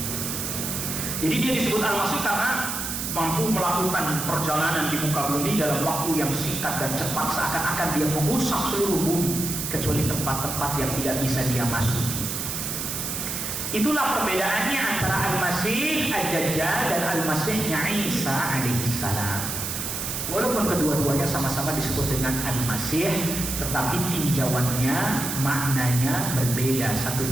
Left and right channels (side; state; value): right; noise; hiss, 4 dB below the sound